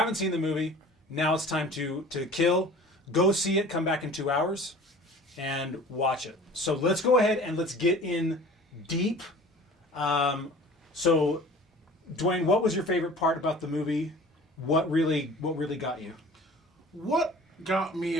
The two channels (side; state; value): both; normal; correlation 0.44